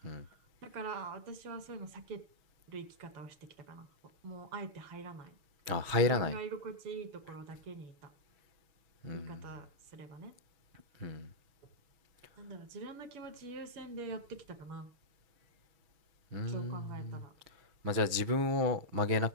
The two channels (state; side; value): late; left; 6.2 ms